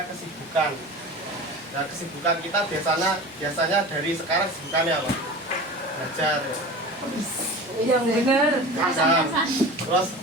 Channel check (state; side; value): normal; both; correlation 0.34